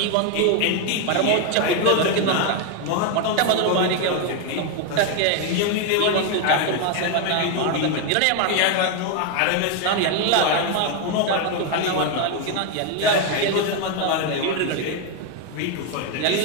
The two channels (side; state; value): both; different; correlation 0.01